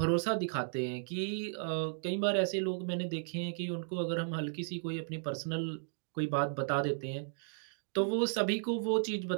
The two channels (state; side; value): silent; left; digital silence